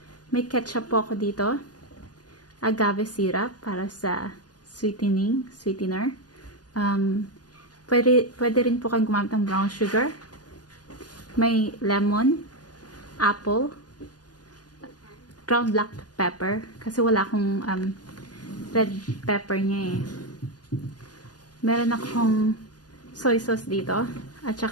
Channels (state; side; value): late; right; 0.69 ms